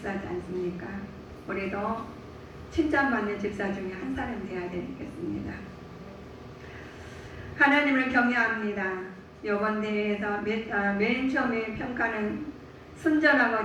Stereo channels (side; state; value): both; identical; correlation 1.00